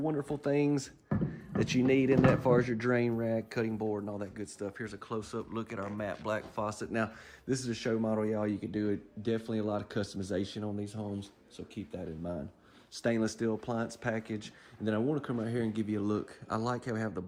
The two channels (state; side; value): identical; both; correlation 1.00